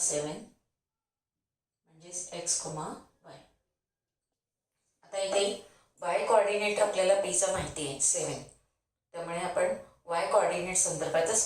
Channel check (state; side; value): identical; both; correlation 1.00